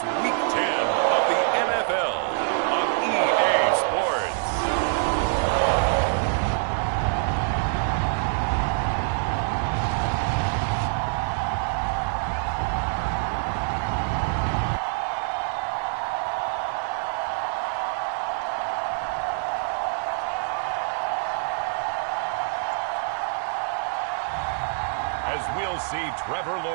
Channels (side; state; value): left; silent; 61 dB below the other